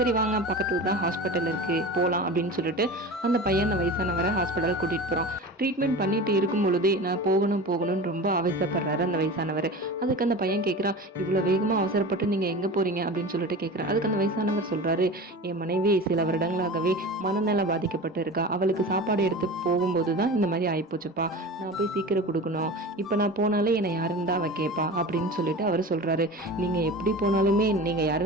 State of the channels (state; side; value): normal; both; correlation 0.33